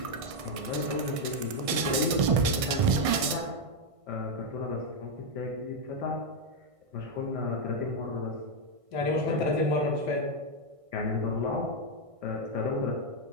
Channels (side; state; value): left; late; 1.6 ms